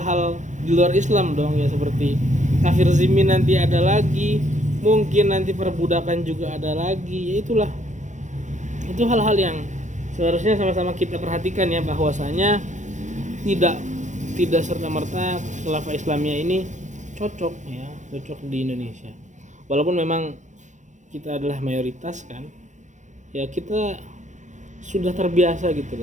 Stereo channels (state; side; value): late; left; 0.35 ms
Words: di luar Islam dong ya, seperti kafir zimmi nanti ada lagi, mungkin nanti perbudakan juga ada lagi, ya itulah, itu hal-hal yang seharusnya sama-sama kita perhatikan ya, bahwasanya tidak serta-merta khilafah Islamiyah ini cocok di Indonesia, walaupun memang kita adalah mayoritas kan ya, kita sudah terbiasa gitu